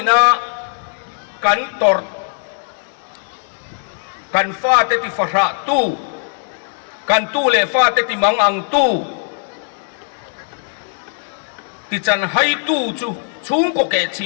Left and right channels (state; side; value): silent; right; digital silence